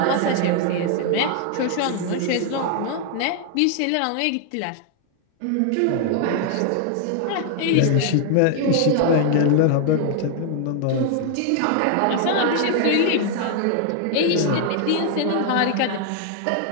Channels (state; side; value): different; both; correlation 0.00